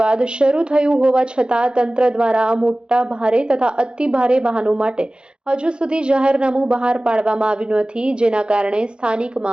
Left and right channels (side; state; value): left; late; 0.052 ms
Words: બાદ શરૂ થયું હોવા છતાં તંત્ર દ્વારા મોટા ભારે તથા અતિ ભારે વાહનો માટે હજુ સુધી જાહેરનામું બહાર પાડવામાં આવ્યું નથી, જેના કારણે